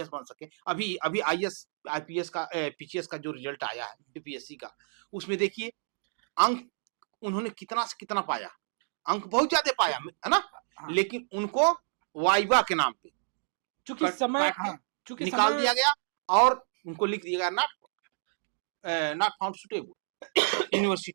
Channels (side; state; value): left; silent; digital silence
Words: बन सके, अभी आईएएस आईपीएस का पीसीएस का जो रिजल्ट आया है यूपीएससी का, उसमें देखिए अंक उन्होंने कितना से कितना पाया, अंक बहुत ज्यादा पाया, है ना, लेकिन उनको वाइवा के नाम पे चूंकि समय, हाँ, चूंकि निकाल दिया गया और उनको लिख दिया गया नॉट फाउंड सुटेबल।